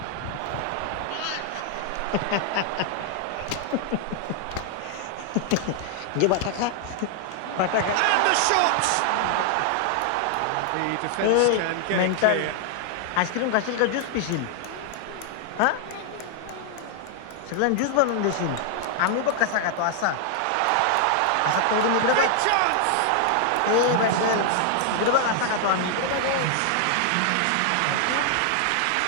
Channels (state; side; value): different; both; correlation 0.00